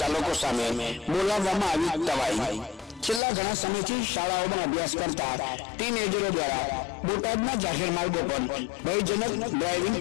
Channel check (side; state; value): right; drops out; at 3.2 s